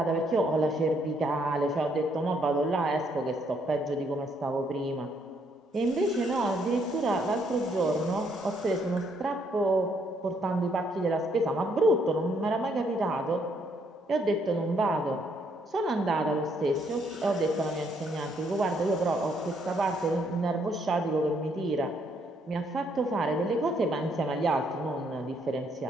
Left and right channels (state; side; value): normal; both; correlation 0.71